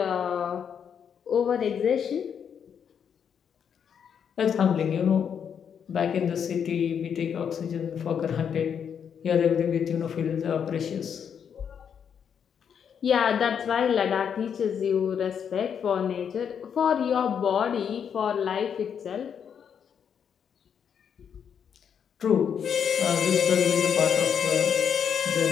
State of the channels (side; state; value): right; quieter; 7.7 dB